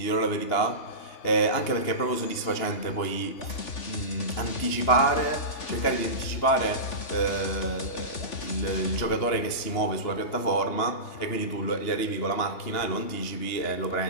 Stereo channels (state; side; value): late; right; 2.9 ms